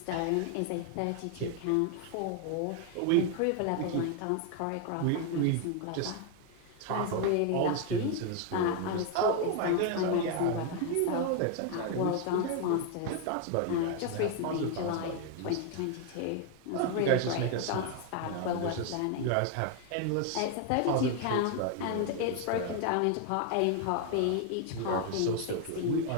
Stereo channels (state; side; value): different; both; correlation 0.01